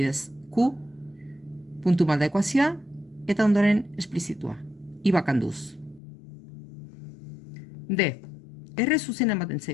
Q, puntu malda ekuazioa, eta ondoren esplizitua. I bakanduz. D. R zuzena ematen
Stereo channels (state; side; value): drops out; right; at 6.0 s